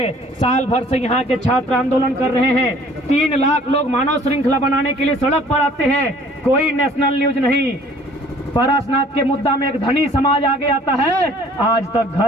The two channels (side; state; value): both; normal; correlation 0.54